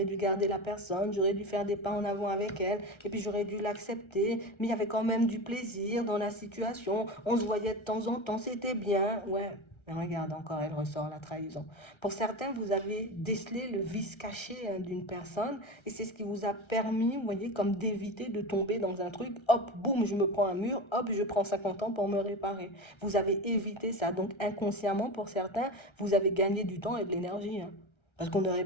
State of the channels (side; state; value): right; late; 1.3 ms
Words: dû garder la personne, j'aurais dû faire des pas en avant avec elle, et puis j'aurais dû l'accepter, mais il y avait quand même du plaisir dans la situation, on se voyait de temps en temps, c'était bien, ouais. Mais regarde, encore, elle ressort la trahison. Pour certains, vous avez décelé le vice caché d'une personne et c'est ce qui vous a permis, vous voyez, comme d'éviter de tomber dans un truc, hop, boum, je me prends un mur, hop, je prends 50 ans pour me réparer. Vous avez évité ça. Donc inconsciemment, pour certains, vous avez gagné du temps et de l'énergie, hein. Parce qu'on aurait